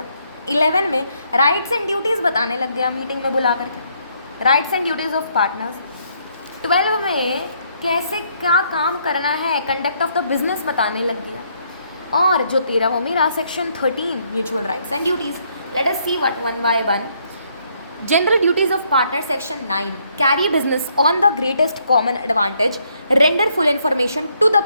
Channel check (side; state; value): both; inverted; correlation -0.71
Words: 11 में rights and duties बताने लग गया मीटिंग में बुला करके, rights and duties of partners. 12 में कैसे क्या काम करना है, कंडक्ट ऑफ द बिजनेस बताने लग गया. और जो 13 वो मेरा section 13 mutual rights and duties. Let us see what one by one. General duties of partner section 9. Carry business on the greatest common advantage, render full information to the